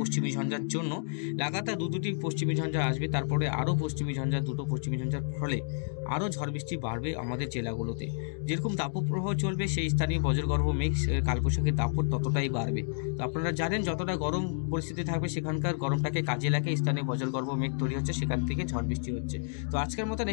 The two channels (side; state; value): right; silent; digital silence